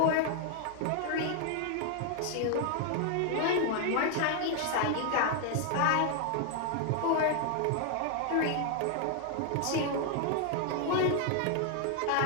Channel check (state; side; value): different; both; correlation 0.00